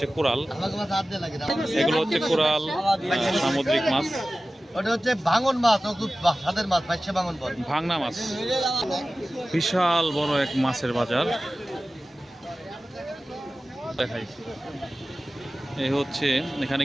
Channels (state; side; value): normal; both; correlation 0.96